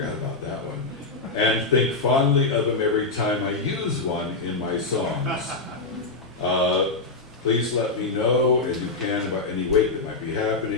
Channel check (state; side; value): quieter; right; 3.6 dB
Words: about that one. And think fondly of him every time I use one in my songs. Please let me know as you can about any wake that might be